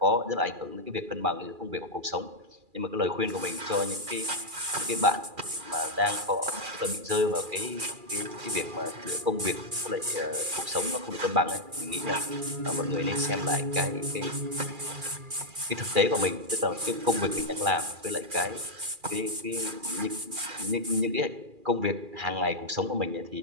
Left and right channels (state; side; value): late; left; 2.4 ms